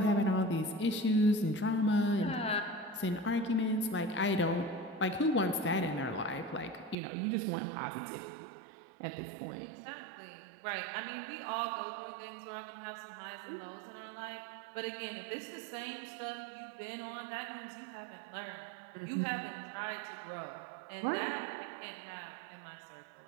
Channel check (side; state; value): left; drops out; at 7.0 s